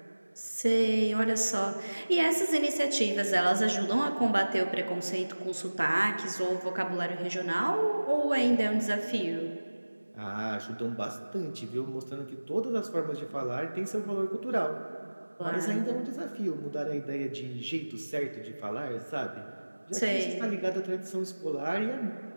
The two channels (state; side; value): inverted; both; correlation -1.00